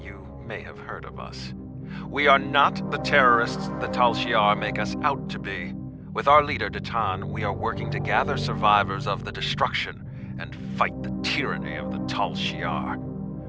may have heard of us. We are not the terrorists the Tal Shiar make us out to be. With our leader, Datan, we are working to gather survivors of the destruction and fight the tyranny of the Tal Shiar.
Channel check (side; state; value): both; identical; correlation 1.00